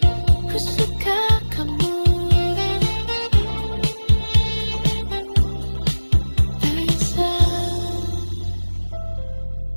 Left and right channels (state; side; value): inverted; both; correlation -1.00